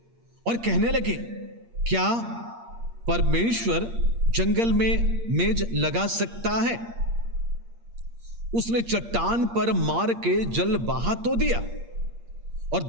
और कहने लगे, क्या परमेश्वर जंगल में मेज लगा सकता है? उसने चट्टान पर मार के जल बहा तो दिया और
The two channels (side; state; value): left; late; 8.6 ms